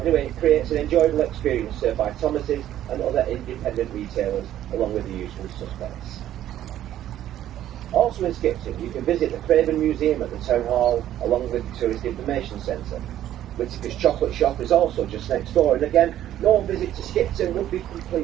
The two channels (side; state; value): left; quieter; 12.1 dB